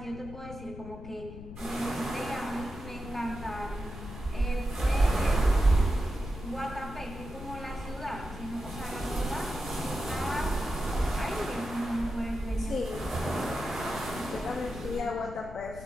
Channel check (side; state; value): left; noise; rumble, 12 dB below the sound